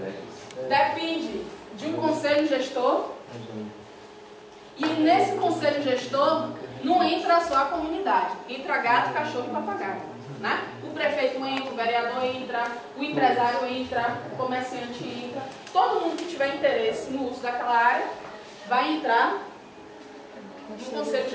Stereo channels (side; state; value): both; identical; correlation 1.00